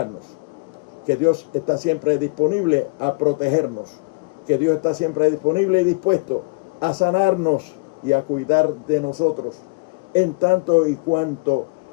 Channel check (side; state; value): right; quieter; 27.8 dB